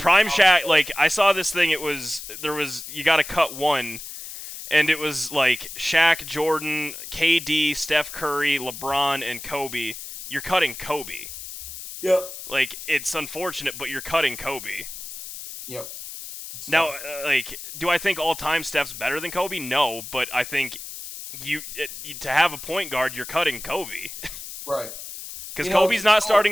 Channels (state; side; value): noise; left; hiss, 11 dB below the sound